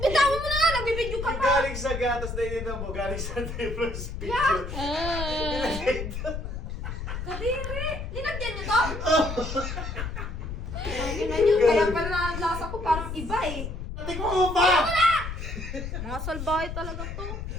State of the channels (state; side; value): noise; left; rumble, 6 dB below the sound